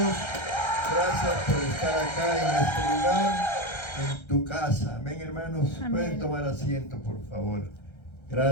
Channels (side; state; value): right; late; 1.3 ms